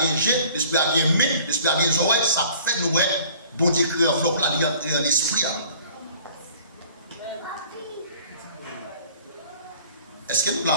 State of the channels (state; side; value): inverted; both; correlation -0.52